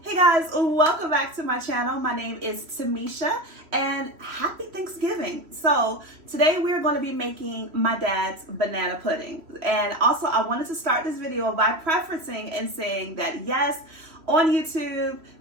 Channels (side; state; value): left; late; 3.1 ms